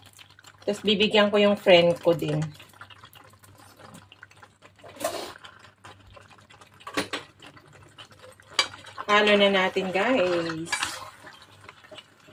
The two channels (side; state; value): both; identical; correlation 1.00